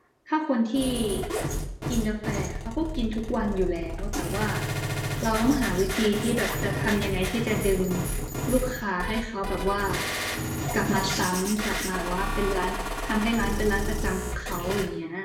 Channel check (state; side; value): identical; both; correlation 1.00